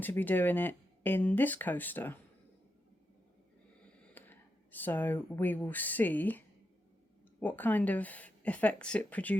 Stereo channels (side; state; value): both; normal; correlation 0.85